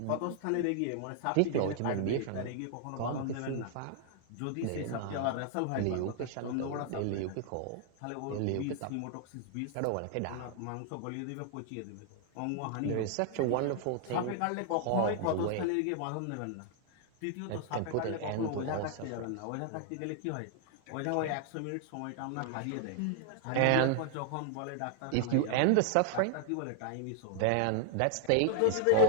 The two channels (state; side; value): different; both; correlation 0.00